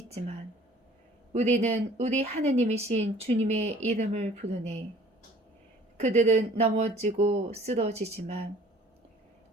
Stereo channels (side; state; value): both; normal; correlation 0.52